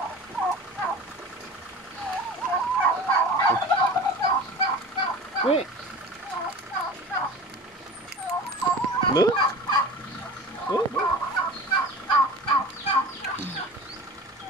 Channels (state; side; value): normal; both; correlation 0.37